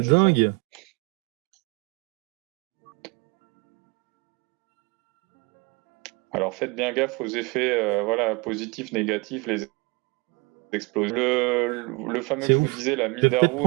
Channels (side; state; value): left; quieter; 25.5 dB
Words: c'est dingue. ça. Alors faites bien gaffe aux effets positifs, négatifs, les explosions. Le fameux C'est que je vous ouf. disais, la Je vais peut-être Mindarou,